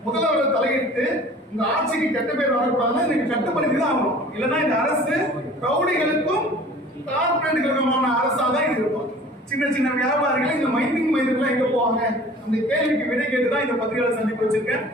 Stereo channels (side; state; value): both; normal; correlation 0.46